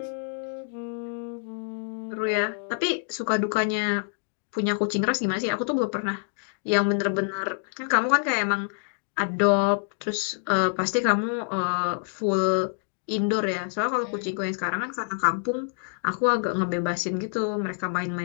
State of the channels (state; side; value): silent; right; 59 dB below the other